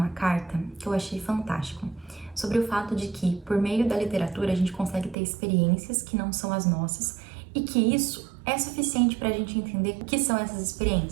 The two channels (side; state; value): left; drops out; at 5.2 s